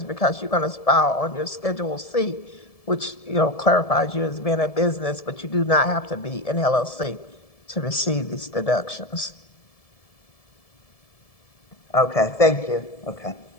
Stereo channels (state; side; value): late; right; 1.7 ms